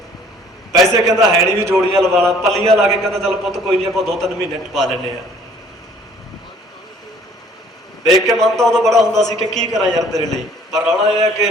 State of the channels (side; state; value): both; normal; correlation 0.56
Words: ਪੈਸੇ ਕਹਿੰਦਾ ਹੈ ਨਹੀਂ ਵੀ ਜੋੜੀਆਂ ਲਵਾ ਲਾ, ਪੱਲੀਆਂ ਲਾ ਕੇ ਕਹਿੰਦਾ ਚੱਲ ਪੁੱਤ ਕੋਈ ਨਹੀਂ ਆਪਾਂ 2-3 ਮਹੀਨੇ ਟਪਾ ਲੈਂਦੇ ਆ। ਦੇਖ ਕੇ ਮਨ ਤਾਂ ਉਦੋਂ ਬੜਾ ਹੁੰਦਾ ਸੀ ਕਿ ਕੀ ਕਰਾਂ ਯਾਰ ਤੇਰੇ ਲਈ, ਪਰ ਰੌਲਾ ਇਹ ਹੈ